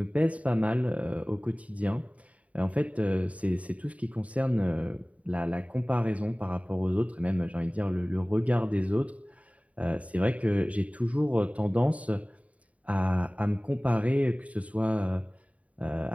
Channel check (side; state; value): left; late; 0.068 ms